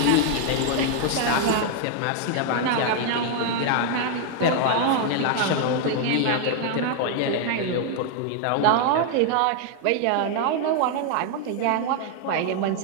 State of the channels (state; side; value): different; both; correlation 0.00